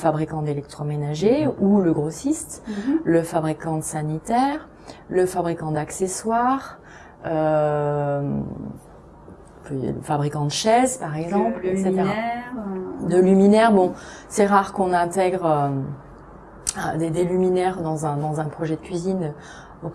d'électroménager ou le grossiste, le fabricant de sanitaire, le fabricant d'accessoires, le fabricant de chaises, par exemple, etc. De luminaires, c'est rare qu'on intègre des luminaires dans un projet de cuisine au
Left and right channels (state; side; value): identical; both; correlation 1.00